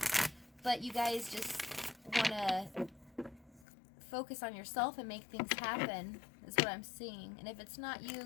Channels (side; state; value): right; drops out; at 3.7 s